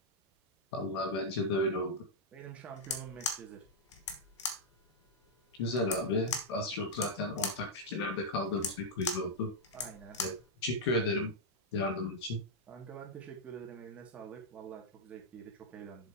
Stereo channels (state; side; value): normal; both; correlation -0.03